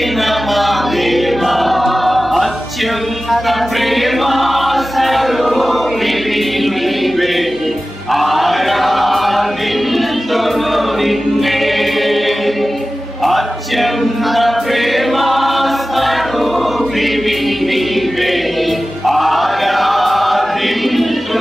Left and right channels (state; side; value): normal; both; correlation 0.95